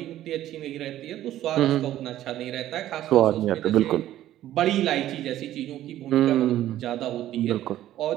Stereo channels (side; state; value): left; quieter; 13.2 dB